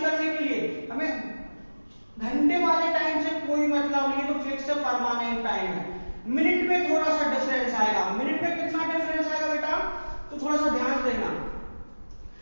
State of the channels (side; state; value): both; inverted; correlation -1.00